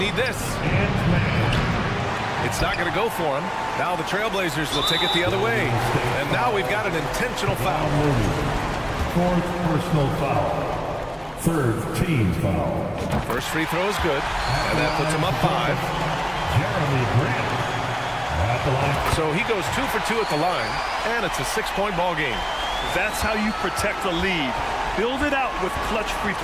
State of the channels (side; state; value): both; identical; correlation 1.00